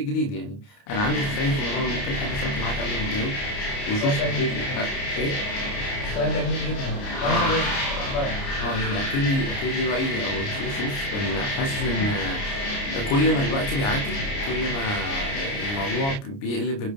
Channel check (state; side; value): late; right; 29 ms